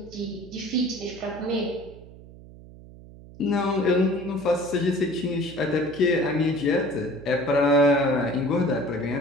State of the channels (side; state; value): right; noise; hum, 19 dB below the sound